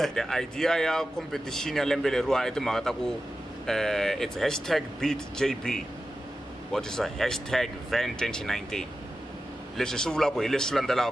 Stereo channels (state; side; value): normal; both; correlation 0.93